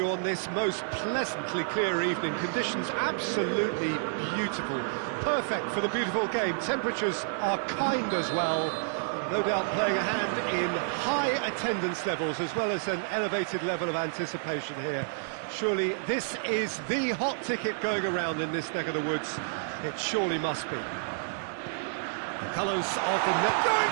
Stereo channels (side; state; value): left; silent; digital silence